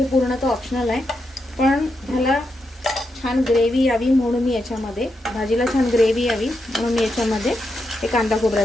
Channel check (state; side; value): normal; both; correlation 0.84